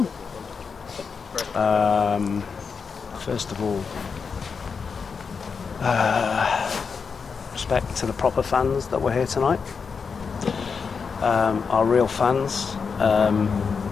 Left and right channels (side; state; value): right; quieter; 5.6 dB